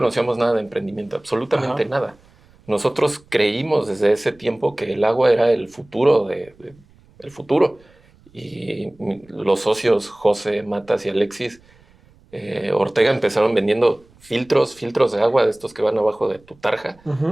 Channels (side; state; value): right; noise; rumble, 30 dB below the sound